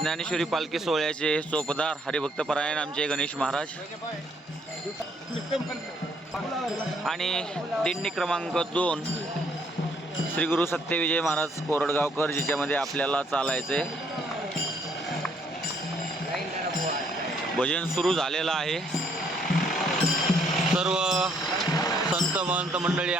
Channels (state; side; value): normal; both; correlation 0.67